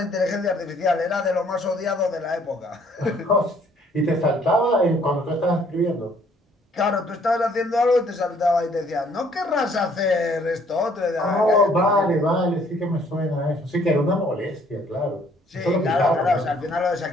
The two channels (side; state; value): both; normal; correlation 0.62